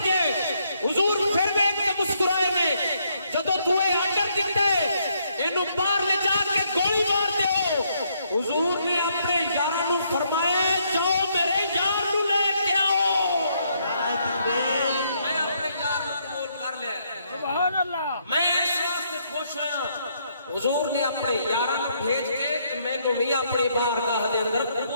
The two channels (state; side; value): inverted; both; correlation -0.73